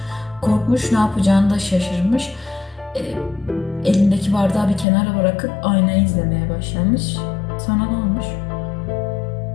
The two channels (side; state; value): right; drops out; at 4.9 s